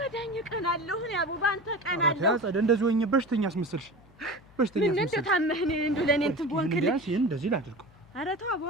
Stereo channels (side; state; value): left; noise; hum, 27 dB below the sound